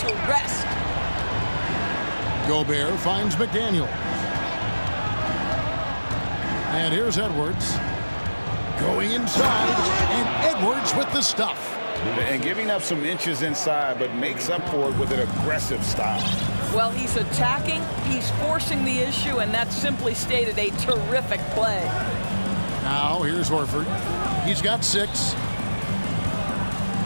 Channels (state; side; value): inverted; both; correlation -1.00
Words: rest. Gobert finds McDaniel. And here's Edwards. Going inside, and Edwards with the stuff. And giving up some inches inside, but makes up for it with an aggressive style. Well, he's attacking, he's forcing the issue, and that simply stated a terrific play. Now, here's Horford. He's got 6.